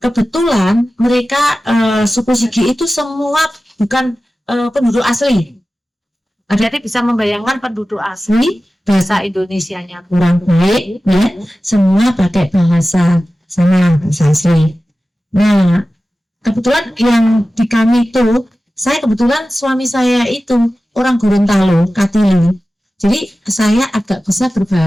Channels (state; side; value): normal; both; correlation 0.95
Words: Kebetulan mereka suku Sigi itu semua bukan penduduk asli. Jadi bisa membayangkan penduduk asli, bahasa Indonesianya kurang baik, ya. Semua pakai bahasa asli. Nah, kebetulan yang di kami itu, saya kebetulan suami saya itu orang Gorontalo, Katili. Jadi saya agak bisa